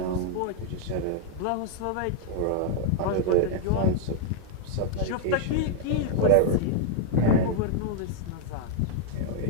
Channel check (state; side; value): different; both; correlation 0.00